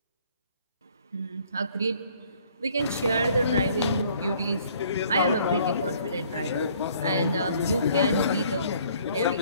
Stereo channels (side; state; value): both; inverted; correlation -0.59